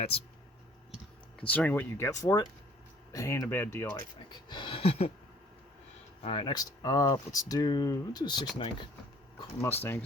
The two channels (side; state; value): both; normal; correlation 0.56